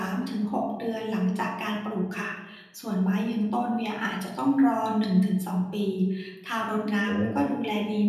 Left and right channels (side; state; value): both; identical; correlation 1.00